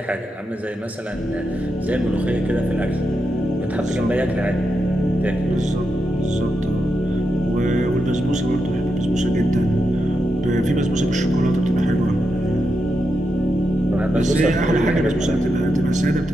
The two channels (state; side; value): normal; both; correlation 0.86